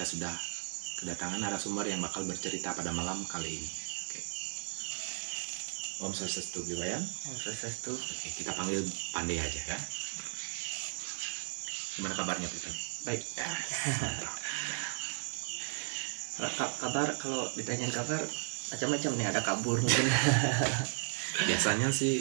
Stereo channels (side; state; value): left; silent; 54 dB below the other